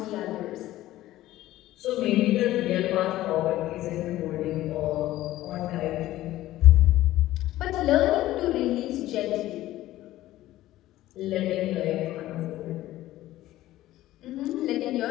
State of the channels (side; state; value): right; quieter; 15.2 dB